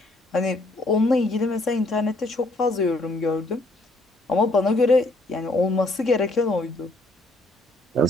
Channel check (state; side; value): normal; both; correlation 0.66